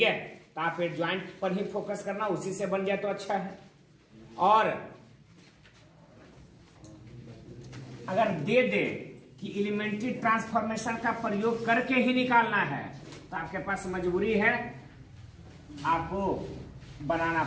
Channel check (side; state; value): both; identical; correlation 1.00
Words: है, तो आप एडजॉइंट पर ही फोकस करना, उसी से बन जाए तो अच्छा है। और अगर दे दे कि एलिमेंट्री ट्रांसफॉर्मेशन का प्रयोग करके ही निकालना है, तो आपके पास मजबूरी है, आपको बनाना